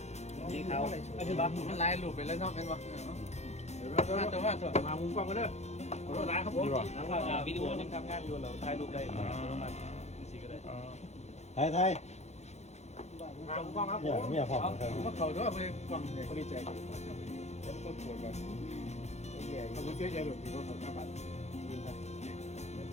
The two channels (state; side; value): late; right; 0.32 ms